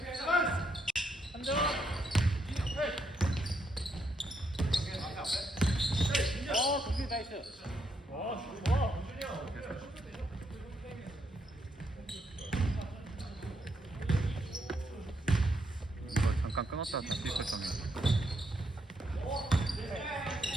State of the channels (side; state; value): both; normal; correlation 0.77